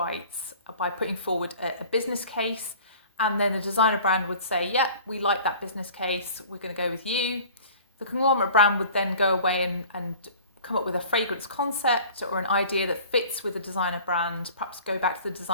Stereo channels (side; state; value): both; inverted; correlation -0.45